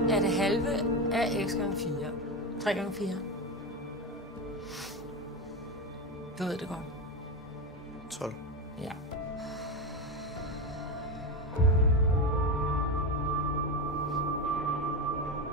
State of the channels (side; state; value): both; normal; correlation 0.17